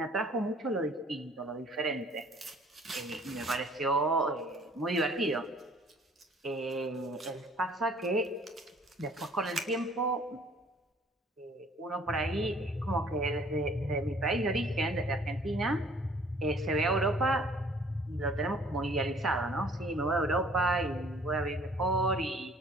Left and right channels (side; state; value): both; normal; correlation 0.55